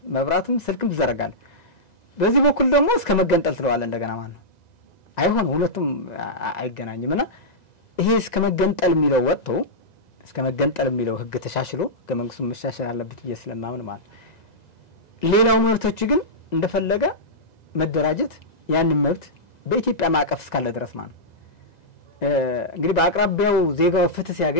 መብራትም ስልክም ትዘረጋለህ በዚህ በኩል ደግሞ እስከ መገንጠል ትለዋለህ እንደገና ማለት ነው አይሆን ሁለቱም አይገናኝምና ይሄ እስከ መገንጠል የሚለው ወጥቶ እስከ መገንጠል የሚለው ህግ ተሻሽሎ ከመንግስቱ መሻሻል አለበት ስለማምን ማለት ሌላው መብቶች ግን እንደፈለገ መደራጀት ያንን መብት በኢትዮጵያ ማዕቀፍ እስካለ ድረስ ማለት እንግዲህ በአቅራቢያው ዜጋው ፍትህ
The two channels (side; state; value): right; late; 1.9 ms